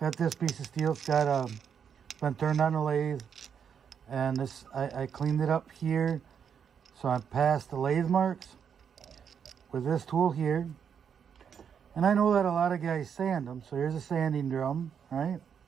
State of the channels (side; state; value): left; quieter; 7.5 dB